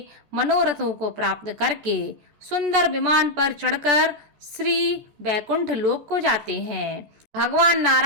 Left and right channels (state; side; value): late; left; 14 ms